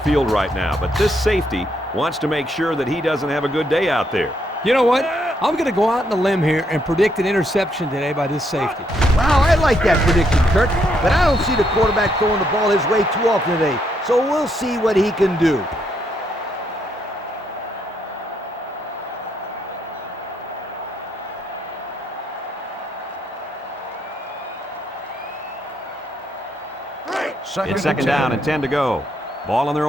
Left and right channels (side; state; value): both; normal; correlation 0.75